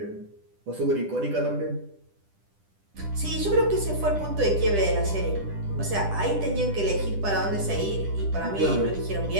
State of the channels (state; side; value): late; left; 10 ms